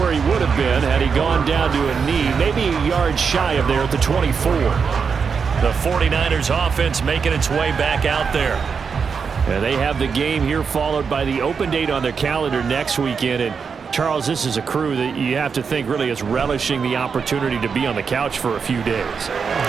he would have been had he gone down to a knee, maybe a yard shy of there at the 24. The 49ers offense making its way back out there. And they have the game here followed by the open date on their calendar next weekend. And Charles, this is a crew that you have to think really is relishing the opportunity to be on the couch for a few days.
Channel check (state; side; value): quieter; left; 5.9 dB